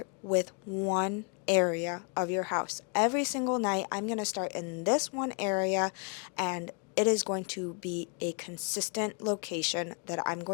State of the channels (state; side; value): quieter; right; 37.5 dB